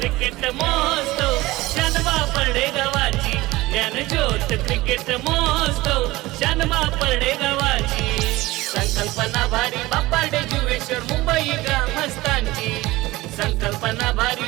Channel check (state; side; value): quieter; left; 19.2 dB